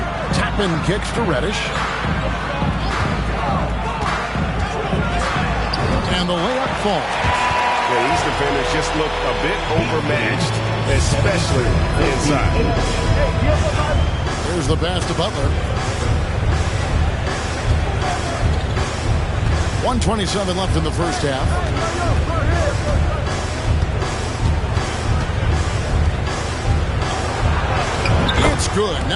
Toppin kicks to Reddish. And the layup falls. Yeah, these defenders just look a bit overmatched, especially inside. Here's the pass to Butler. 1:27 left in the first half. It's good.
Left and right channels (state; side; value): identical; both; correlation 1.00